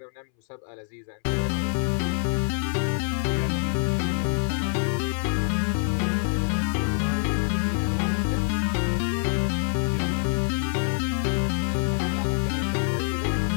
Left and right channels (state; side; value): silent; right; 61 dB below the other